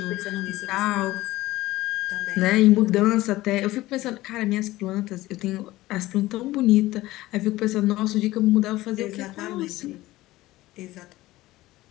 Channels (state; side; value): quieter; right; 17.5 dB